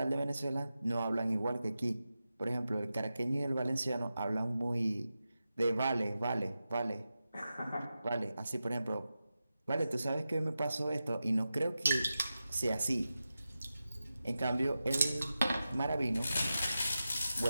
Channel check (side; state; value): both; inverted; correlation -0.92